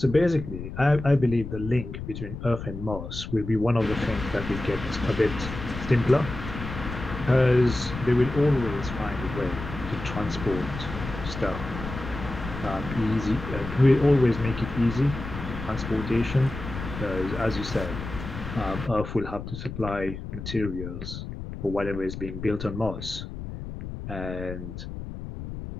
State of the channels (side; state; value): left; noise; rumble, 9 dB below the sound